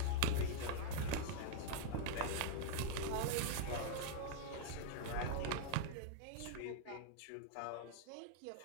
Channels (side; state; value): both; different; correlation -0.01